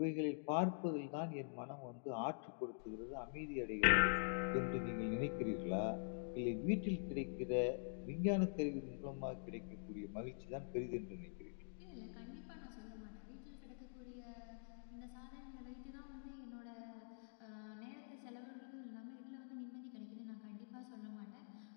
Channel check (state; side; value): silent; right; digital silence